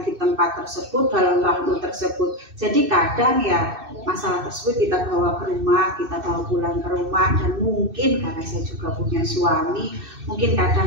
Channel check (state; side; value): late; left; 2.6 ms